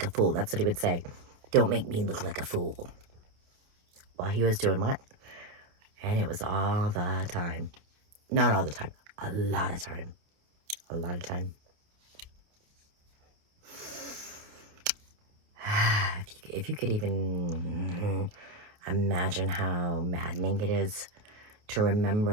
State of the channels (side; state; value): left; late; 28 ms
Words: a fool. That's what he would say. Don't make me look like a fool. While he was doing what? And it was all the time. Not all the time. A lot of time. A lot of time. If you could even imagine how maddening it is to